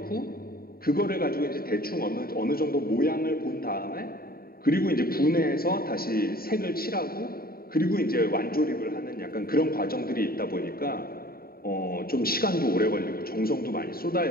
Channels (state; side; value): late; right; 0.43 ms